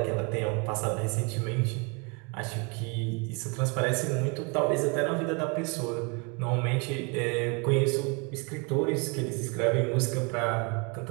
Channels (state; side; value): quieter; left; 32.2 dB